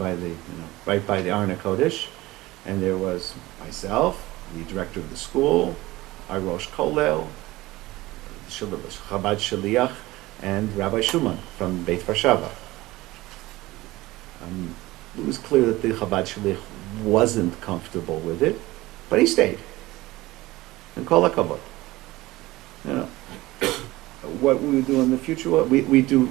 right by the Aron HaKodesh, and there was myself, the director of the school, our Rosh Kollel, Chabad Shaliach, and Rabbi Shuman from Beit Varshava. It was clear that the Chabad Shaliach wasn't comfortable with it, but he stayed. And kol hakavod. What we do in the future, we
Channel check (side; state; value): left; quieter; 18.9 dB